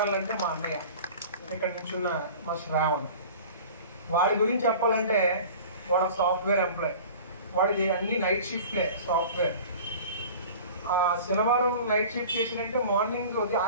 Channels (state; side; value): inverted; both; correlation -0.41